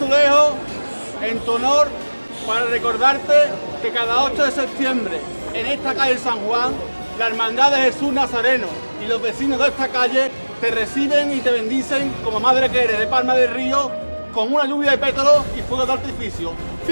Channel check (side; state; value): both; inverted; correlation -1.00